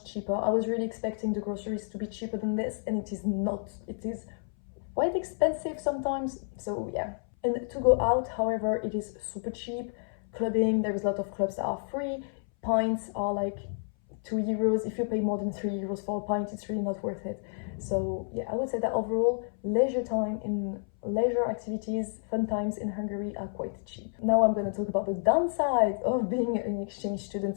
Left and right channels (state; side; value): silent; right; 58 dB below the other